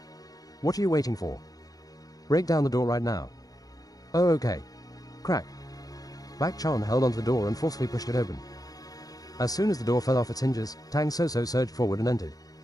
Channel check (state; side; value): late; right; 0.18 ms